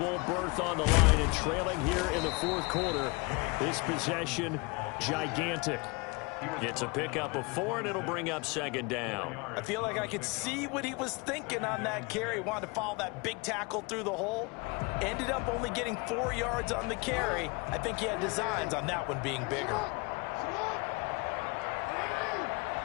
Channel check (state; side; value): quieter; right; 28.2 dB